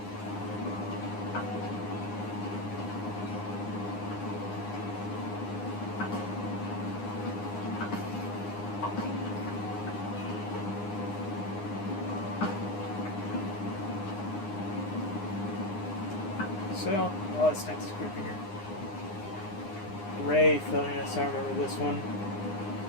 So, oh, this next creeper here. Wraith, oh yes, I remember this one.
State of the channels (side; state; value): right; late; 9.8 ms